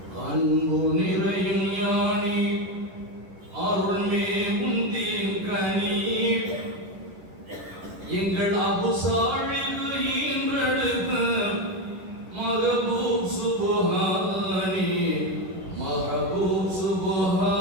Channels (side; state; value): left; late; 10 ms